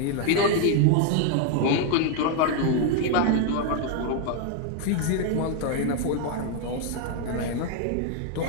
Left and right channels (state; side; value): different; both; correlation 0.00